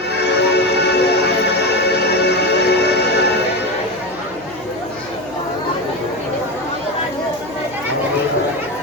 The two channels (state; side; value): noise; right; hum, 24 dB below the sound